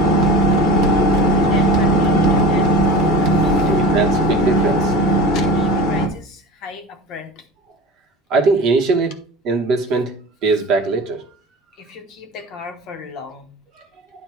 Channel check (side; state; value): both; normal; correlation 0.34